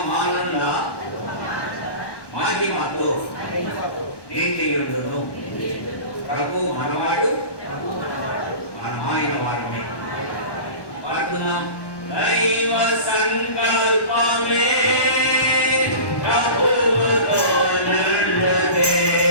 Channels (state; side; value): late; right; 1.1 ms